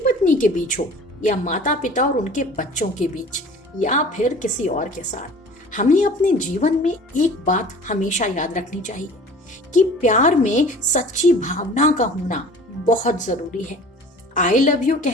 पत्नी के बीच हो, या माता पिता और उनके बच्चों के बीच, या फिर किसी और के साथ। हमें अपने जीवन में एक बात हमेशा याद रखनी चाहिए कि प्यार में सच्ची भावना का होना बहुत जरूरी है। आई लव यू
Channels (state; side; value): normal; both; correlation 0.44